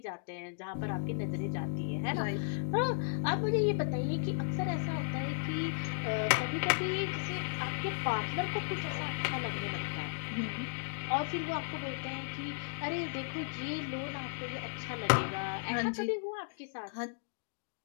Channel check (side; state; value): right; silent; digital silence